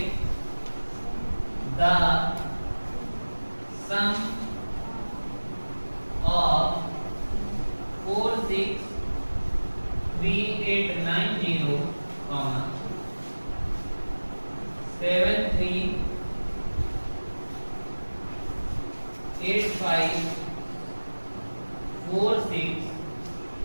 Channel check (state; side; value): inverted; both; correlation -1.00